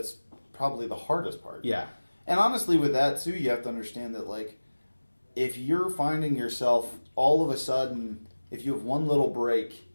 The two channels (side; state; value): both; inverted; correlation -1.00